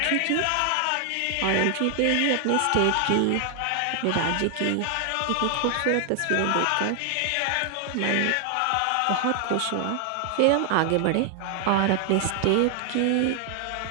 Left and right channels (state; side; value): different; both; correlation 0.00